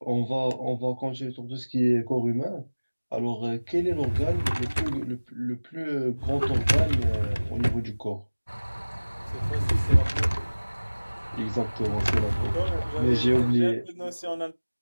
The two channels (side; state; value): both; inverted; correlation -1.00